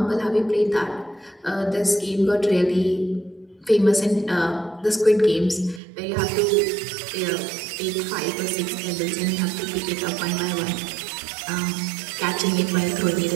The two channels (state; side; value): drops out; left; at 5.8 s